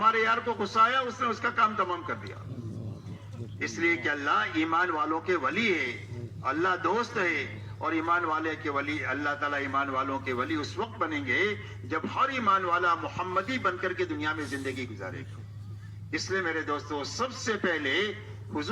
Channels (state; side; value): identical; both; correlation 1.00